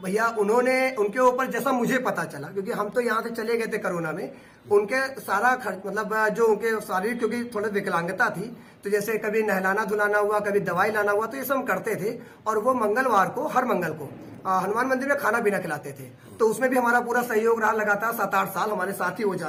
भैया उनके ऊपर जैसा मुझे पता चला, क्योंकि हम तो यहाँ से चले गए थे कोरोना में, उनके सारा खर्च मतलब जो उनके शारीरिक, क्योंकि थोड़ी विकलांगता थी, तो जैसे कभी नहलाना धुलाना हुआ, कभी दवाई लाना हुआ, तो ये सब हम करते थे। और वो मंगलवार को, हर मंगल को हनुमान मंदिर में खाना पीना खिलाते थे। तो उसमें भी हमारा पूरा सहयोग रहा, लगातार 7-8 साल हमारे साथ ही हो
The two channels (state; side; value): identical; both; correlation 1.00